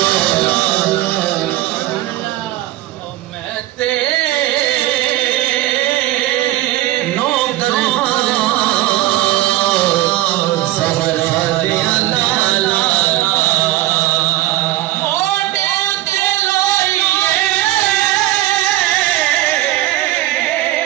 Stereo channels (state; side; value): quieter; left; 15.6 dB